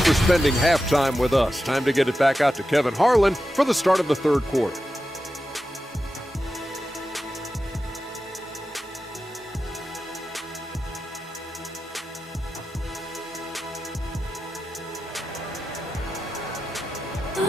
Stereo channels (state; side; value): normal; both; correlation 0.91